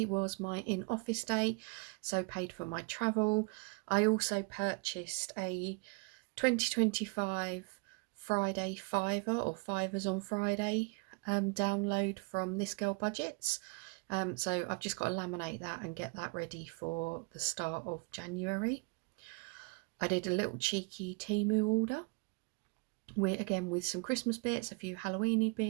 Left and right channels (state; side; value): quieter; left; 33.5 dB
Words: was my in-office day, so paid for my travel. I also purchased a 2025 Friday Fiver or Fivers on Friday download from This Girl Budgets. So I've just got to laminate that and get that ready for the start of January. I did a little cheeky Temu order with some Christmas bits, a few Halloweeny